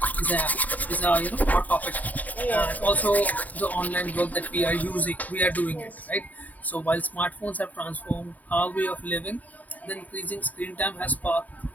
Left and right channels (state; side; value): late; right; 0.076 ms